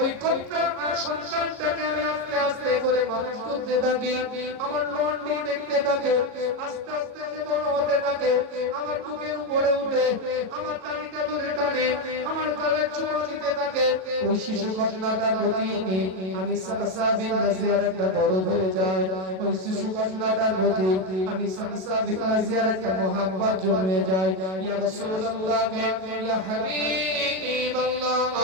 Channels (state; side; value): late; left; 37 ms